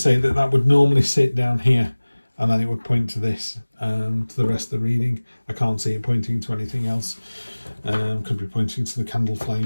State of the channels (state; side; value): inverted; both; correlation -1.00